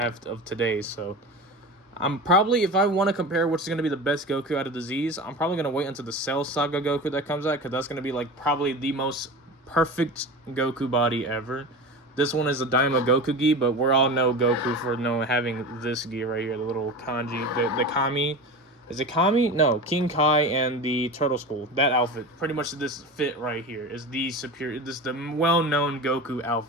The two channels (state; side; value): normal; both; correlation 0.29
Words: of today. So I'm probably, if I want to compare which is going to be the best Goku out of the Z's, I'm probably going to wait until the Cell Saga Goku that comes out, because that's going to be like probably the most perfect Goku body ever. This one is a Daima Goku gi, but we all know Goku for having this gi right here, the little kanji, the Kami. Is it Kami? No, King Kai and the Turtle Skull. That outfit, pretty much this fit right here, is the superior. This is the well-known Goku